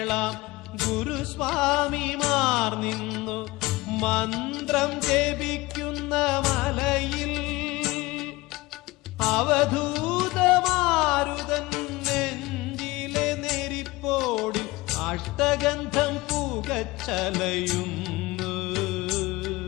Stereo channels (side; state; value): right; quieter; 21.0 dB